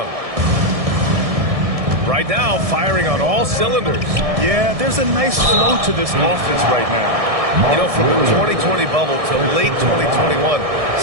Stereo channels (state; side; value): late; left; 1.6 ms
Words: Right now, firing on all cylinders. Yeah, there's a nice flow to this offense right now. You know, from the 2020 bubble to late 2021,